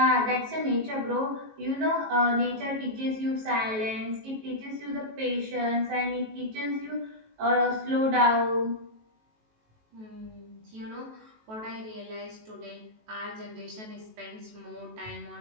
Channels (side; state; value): left; late; 18 ms